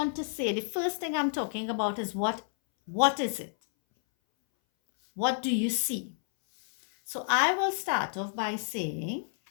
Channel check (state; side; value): silent; right; 58 dB below the other